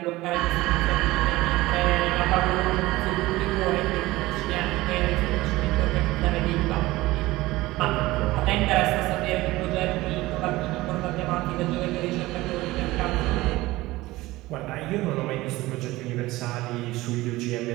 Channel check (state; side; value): quieter; left; 18.8 dB